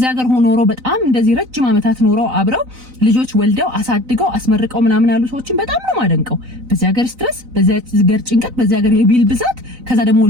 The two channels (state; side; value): late; left; 4.0 ms